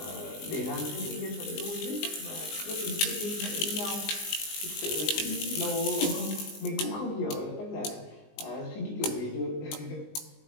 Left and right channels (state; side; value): late; right; 19 ms